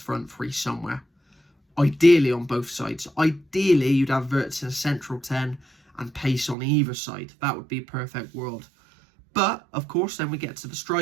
three somewhere. Ideally on both sides. Ideally you'd have Wirtz in a central 10 and pace on either side. That would be a perfect world. But of course then we get to the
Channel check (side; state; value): left; drops out; at 6.6 s